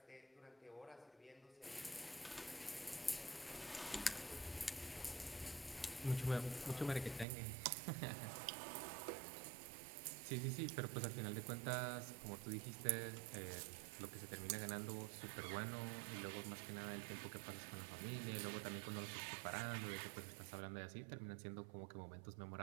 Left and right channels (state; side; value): drops out; left; at 7.2 s